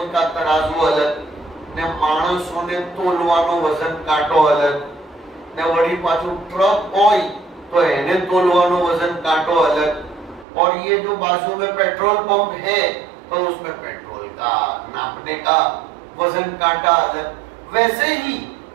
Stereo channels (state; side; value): drops out; left; at 10.5 s